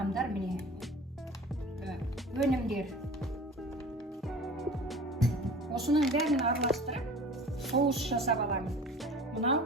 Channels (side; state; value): both; normal; correlation 0.41